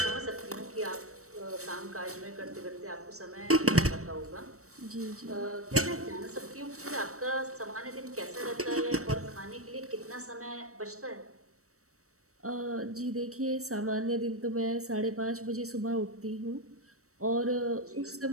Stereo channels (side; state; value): left; late; 0.65 ms